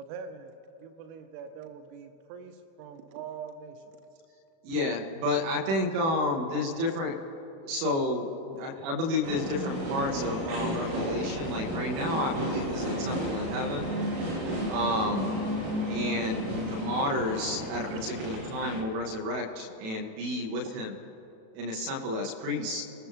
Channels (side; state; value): left; late; 36 ms